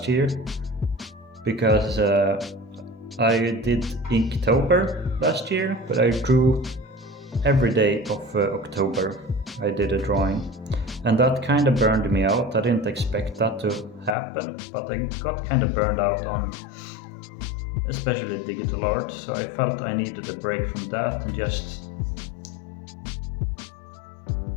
year, because I did Inktober last year, but I drew every day of October. I did a drawing, and that kind of burned me out. I didn't expect that to happen, but I got kind of burned out on especially digital art, so I felt I needed a break from that and just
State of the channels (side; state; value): right; drops out; at 14.2 s